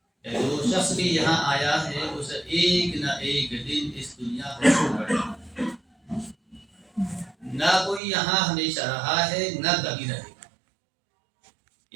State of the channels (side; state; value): left; drops out; at 8.0 s